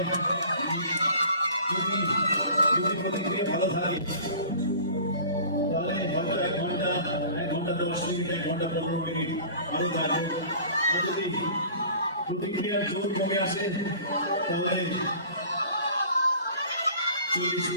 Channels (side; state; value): both; inverted; correlation -0.44